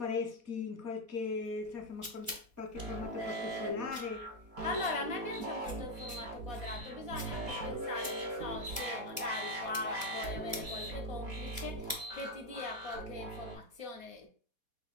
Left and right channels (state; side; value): late; left; 4.2 ms